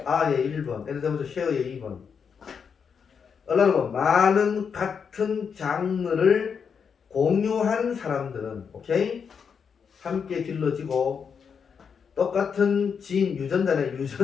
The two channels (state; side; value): quieter; right; 6.5 dB